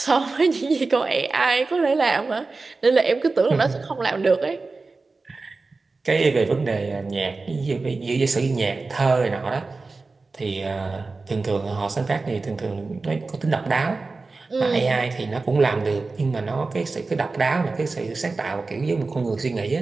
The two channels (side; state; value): left; quieter; 3.8 dB